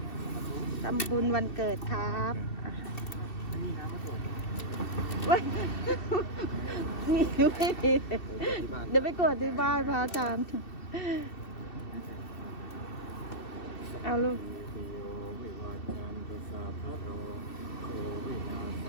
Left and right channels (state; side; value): late; right; 2.7 ms